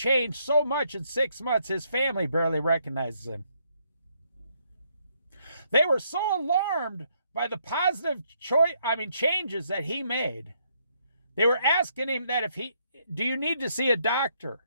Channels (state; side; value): inverted; both; correlation -0.72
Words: so much in 6 months, his family barely recognizes him. They were so alarmed by the positive changes that he made. They were asking him that do you need to see a doctor?